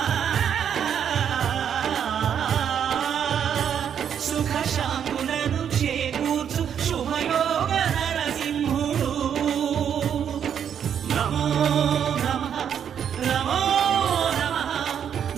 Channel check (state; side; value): quieter; left; 8.5 dB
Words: సుఖ శాంతులను చేకూర్చు శుభయోగ నరసింహుడు. నమో నమః నమో నమః.